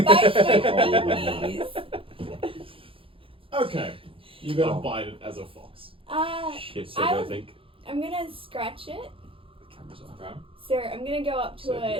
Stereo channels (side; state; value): left; late; 0.26 ms